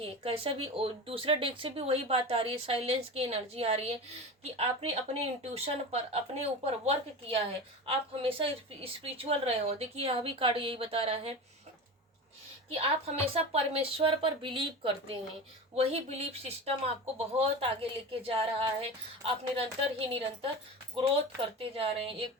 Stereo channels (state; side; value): normal; both; correlation 0.28